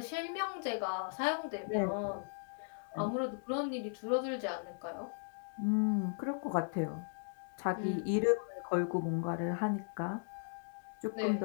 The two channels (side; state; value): right; silent; digital silence